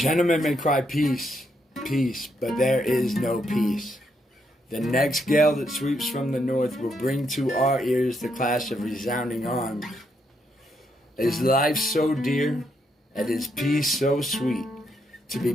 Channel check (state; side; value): normal; both; correlation 0.77